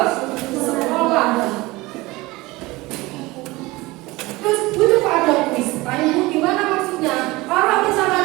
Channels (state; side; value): quieter; left; 21.1 dB